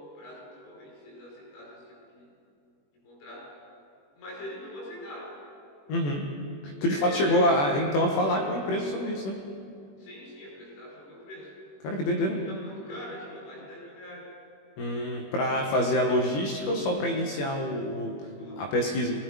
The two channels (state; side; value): late; right; 21 ms